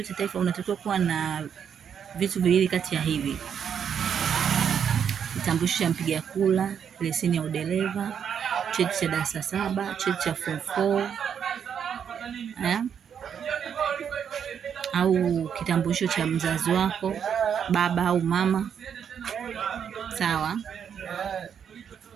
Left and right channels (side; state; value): left; quieter; 7.9 dB